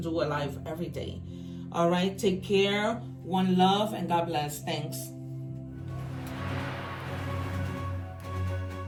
a live every day. All right, take care, one love, and God bless. Thanks.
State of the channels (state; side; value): identical; both; correlation 1.00